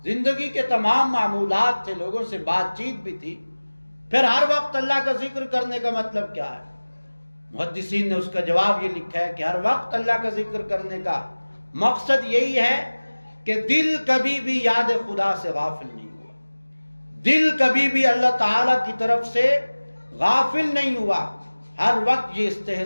زندگی کے تمام معمولات تھے، لوگوں سے بات چیت بھی تھی۔ پھر ہر وقت اللہ کا ذکر کرنے کا مطلب کیا ہے؟ محدثین نے اس کا جواب یہ لکھا ہے کہ ہر وقت اللہ کا ذکر کرنے کا مقصد یہی ہے کہ دل کبھی بھی یاد خدا سے غافل نہیں ہوا، دل کبھی بھی اللہ تعالیٰ کی طرف سے غافل نہیں ہوا، ہر وقت یہ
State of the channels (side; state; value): both; inverted; correlation -1.00